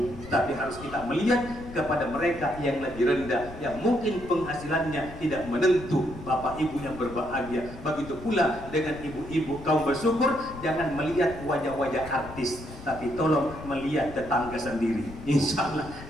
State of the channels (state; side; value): noise; left; rumble, 14 dB below the sound